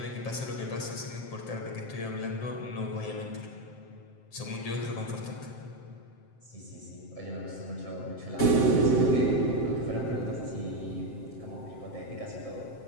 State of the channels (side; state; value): right; late; 7.6 ms